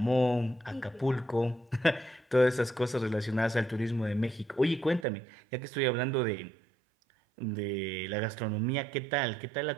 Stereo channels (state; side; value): drops out; left; at 5.1 s